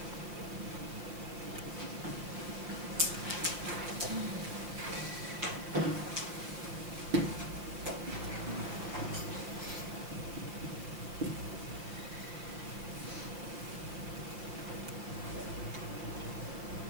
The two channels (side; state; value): left; late; 5.5 ms